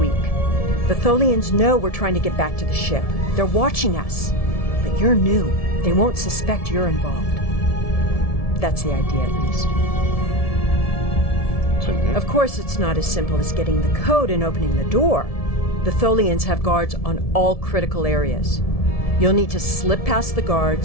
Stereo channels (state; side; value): late; right; 1.7 ms